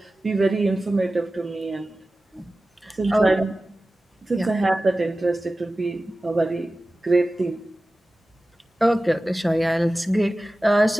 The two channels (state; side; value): normal; both; correlation 0.96